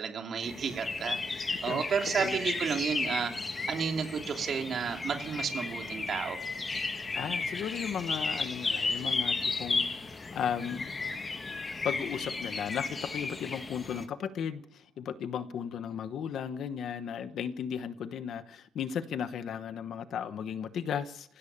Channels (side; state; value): both; normal; correlation 0.77